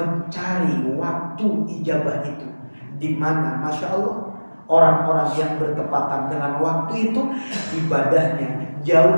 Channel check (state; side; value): inverted; both; correlation -1.00